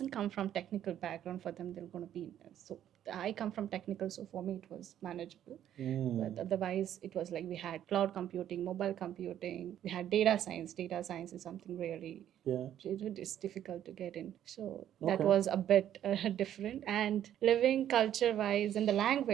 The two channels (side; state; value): left; quieter; 10.9 dB